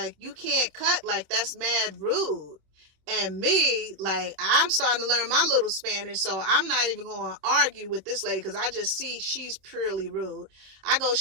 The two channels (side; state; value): left; late; 26 ms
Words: "You can't cut, like, that's mad rude." And me, like, I'm starting to learn my little Spanish, so I'm not even going to argue with this lady because I just see she's purely rude. I go